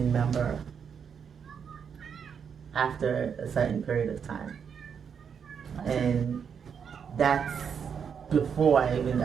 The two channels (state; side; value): quieter; left; 7.1 dB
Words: member after a certain period of time. And that's before I even